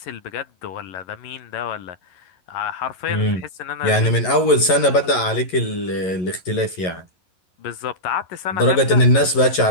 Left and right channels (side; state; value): right; late; 11 ms